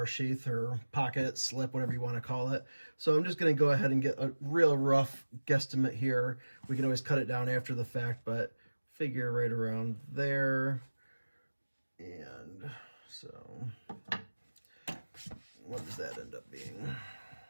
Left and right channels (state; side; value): inverted; both; correlation -1.00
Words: sheath or pocket, slip, whatever you want to call it. So I'm just going to go ahead and get a real rough guesstimate here. We can always cut it down after the fact, but figure right around there. And so what does that end up being?